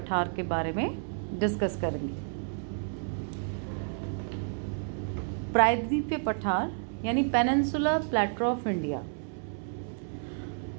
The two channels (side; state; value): left; silent; 57 dB below the other